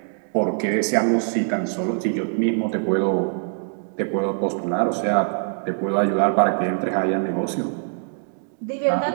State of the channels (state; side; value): silent; left; digital silence